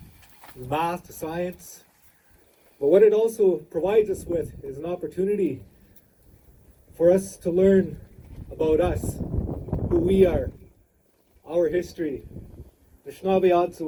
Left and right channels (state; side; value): identical; both; correlation 1.00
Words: from math to science. But what it also provides us with is an opportunity for us to learn about us, who we are, our history, who